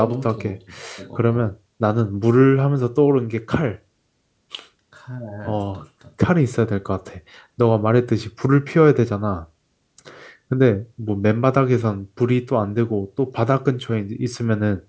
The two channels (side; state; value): both; identical; correlation 1.00